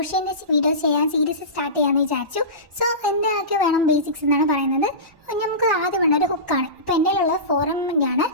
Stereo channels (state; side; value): late; left; 1.1 ms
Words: വീഡിയോ ചെയ്യാൻ സീരീസ് സ്റ്റാർട്ട് ചെയ്യാമെന്ന് വിചാരിച്ചു. എന്തൊക്കെ വേണം ബേസിക്സ് എന്നാണ് പറയുന്നത്. നമുക്ക് ആദ്യം വേണ്ട ഒരു ഹുക്കാണ്. ഇപ്പോൾ എൻ്റെ കയ്യിലുള്ള 4mm ആണ്.